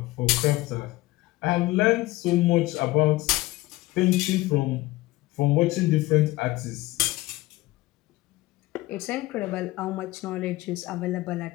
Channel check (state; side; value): quieter; right; 18.8 dB